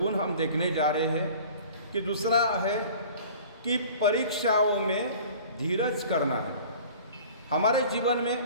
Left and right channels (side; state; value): both; inverted; correlation -0.45